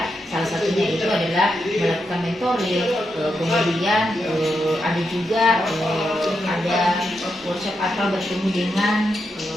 Salah satunya itu adalah melakukan mentoring, kemudian ada juga ada workshop atau bertemu dengan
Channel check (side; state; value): both; normal; correlation 0.84